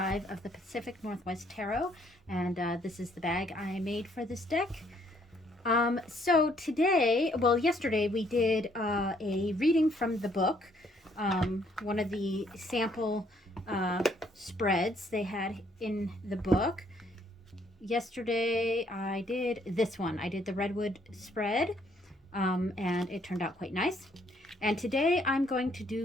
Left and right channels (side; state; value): both; normal; correlation 0.67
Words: of the Pacific Northwest Tarot, and this is the bag I made for this deck. So today, well, yesterday we did a reading from the book, one of the sample spreads they had in the book. Yesterday I did this one. I did the Redwood spread. And it turned out quite nice. And today I'm going to